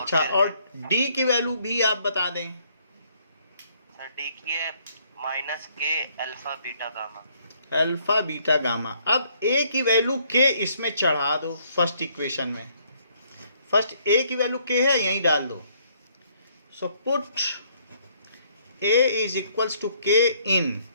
और डी की वैल्यू भी आप बता दें। सर डी की है minus k alpha beta gamma. Alpha beta gamma. अब ए की वैल्यू के इसमें चढ़ा दो फर्स्ट इक्वेशन में। फर्स्ट ए की वैल्यू के है, यहीं डाल दो। So put a is equals to k in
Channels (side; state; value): both; inverted; correlation -0.67